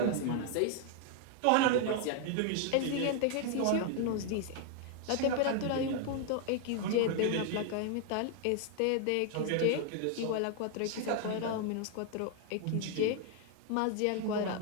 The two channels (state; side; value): different; both; correlation 0.00